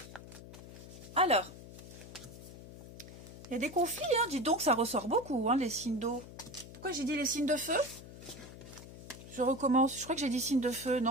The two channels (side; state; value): left; noise; hum, 15 dB below the sound